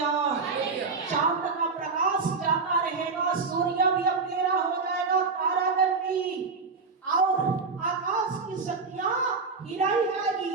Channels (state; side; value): quieter; left; 4.6 dB